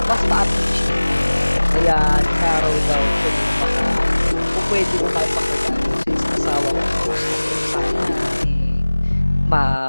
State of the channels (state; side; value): inverted; both; correlation -1.00